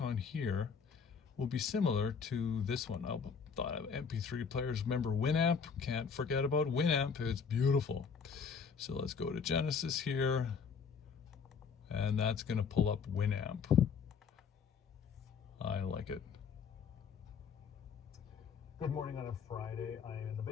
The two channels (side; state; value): right; quieter; 6.1 dB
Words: here will be similar to this one. I thought of MP3 players. Remember Winamp? Can't forget about Winamp. It's beautiful. So let's go to Genesis here. And that's going to pull up Winamp. like it. Good morning on a Friday. I am in the